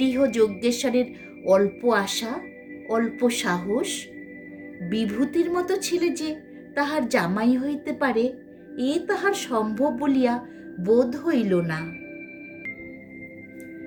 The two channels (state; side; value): identical; both; correlation 1.00